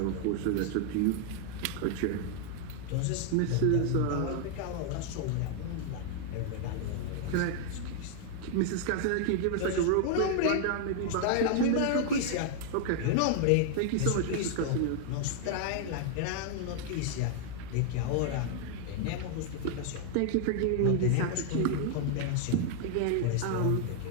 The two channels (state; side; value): different; both; correlation 0.00